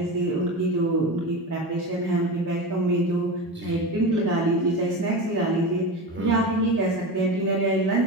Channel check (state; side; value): normal; both; correlation 0.24